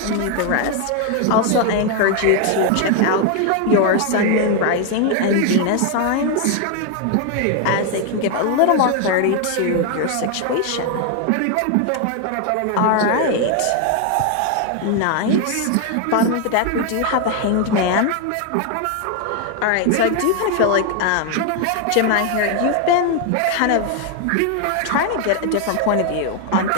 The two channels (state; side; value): different; both; correlation 0.01